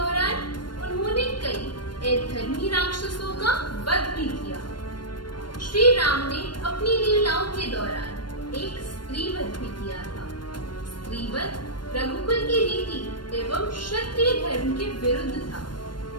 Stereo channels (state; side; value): late; right; 0.72 ms